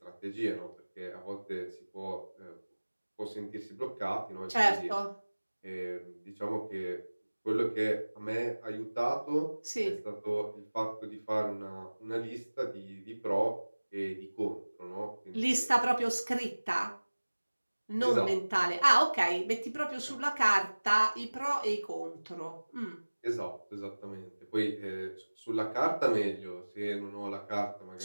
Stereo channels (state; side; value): inverted; both; correlation -1.00